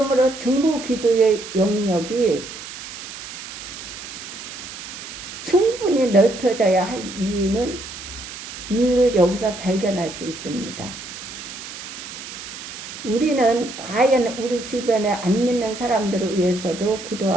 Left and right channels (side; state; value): right; noise; hiss, 11 dB below the sound